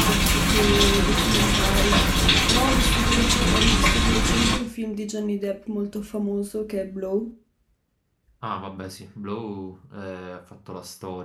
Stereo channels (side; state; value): both; identical; correlation 1.00